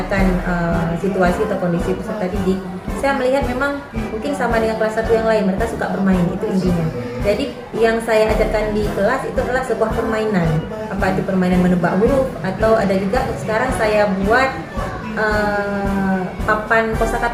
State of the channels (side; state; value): both; identical; correlation 1.00